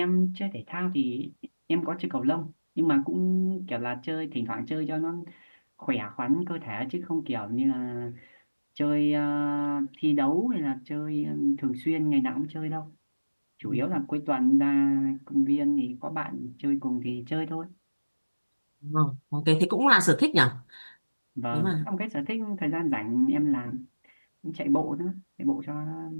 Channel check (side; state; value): both; inverted; correlation -1.00